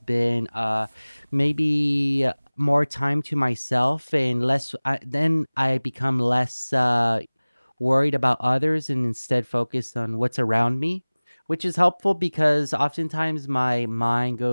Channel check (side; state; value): both; inverted; correlation -1.00